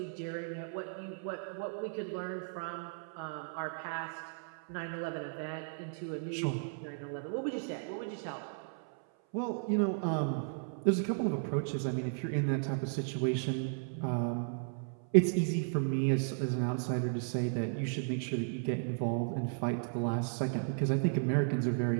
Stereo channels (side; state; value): left; silent; 54 dB below the other